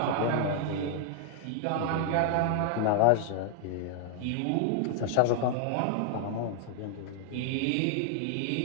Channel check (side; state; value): both; different; correlation 0.00